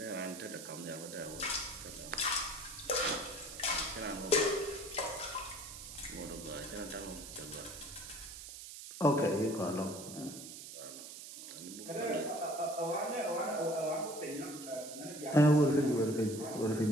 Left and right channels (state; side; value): noise; right; hiss, 12 dB below the sound